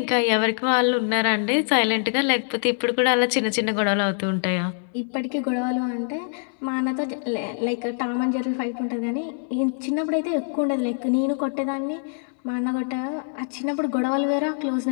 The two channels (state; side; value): silent; right; 62 dB below the other